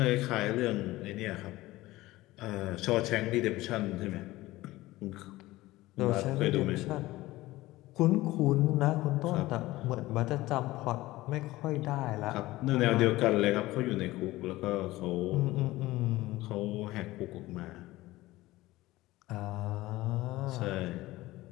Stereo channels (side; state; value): right; quieter; 18.1 dB